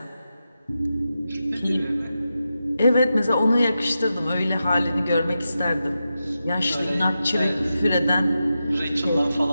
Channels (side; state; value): both; inverted; correlation -0.90